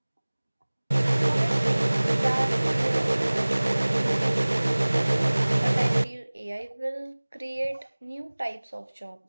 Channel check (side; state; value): both; inverted; correlation -1.00